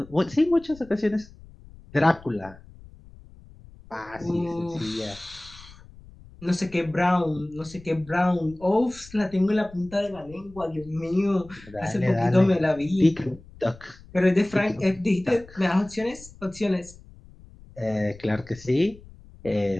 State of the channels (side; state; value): left; noise; rumble, 21 dB below the sound